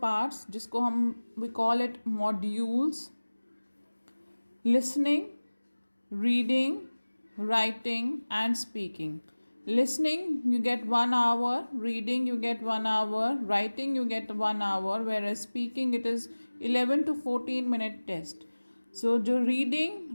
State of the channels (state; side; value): inverted; both; correlation -1.00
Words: जिसको हम we call it modules: listening, reading, writing and speaking. Listening you get 1 hour, reading you get 1 hour, writing you get 1 hour, whereas speaking it is 11 to 14 minute test. So the reading,